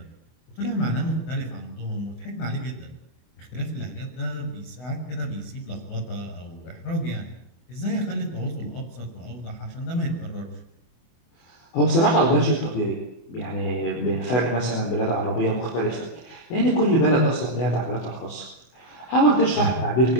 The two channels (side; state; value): right; late; 24 ms